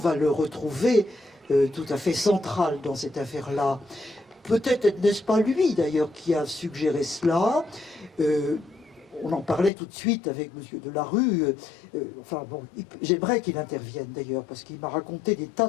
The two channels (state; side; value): drops out; right; at 9.7 s